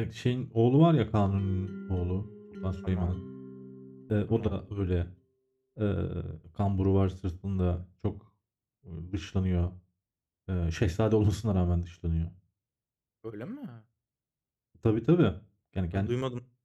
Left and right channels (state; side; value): identical; both; correlation 1.00